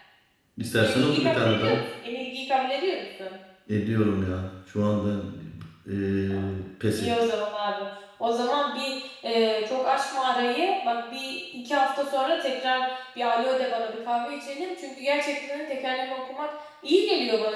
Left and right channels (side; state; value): both; identical; correlation 1.00